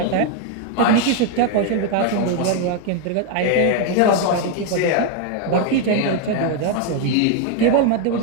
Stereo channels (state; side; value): different; both; correlation 0.01